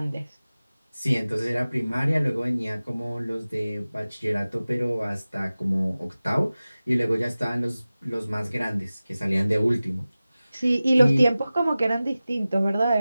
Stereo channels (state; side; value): inverted; both; correlation -0.97